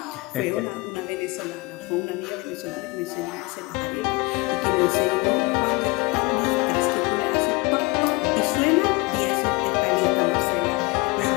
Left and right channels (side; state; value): right; quieter; 25.2 dB